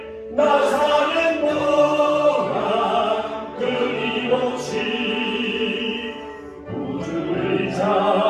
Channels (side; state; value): both; identical; correlation 1.00